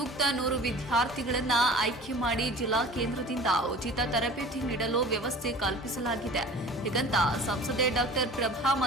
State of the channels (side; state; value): both; normal; correlation 0.42